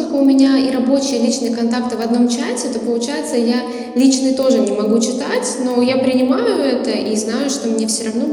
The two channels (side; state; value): both; identical; correlation 1.00